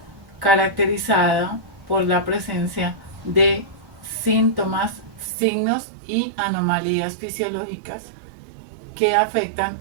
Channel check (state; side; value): drops out; left; at 5.3 s